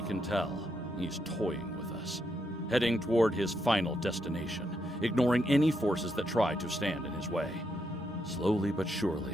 can tell, he's toying with us, heading toward his final destination, ignoring any forces that try to stand in his way. Slowly but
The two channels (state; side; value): normal; both; correlation 0.80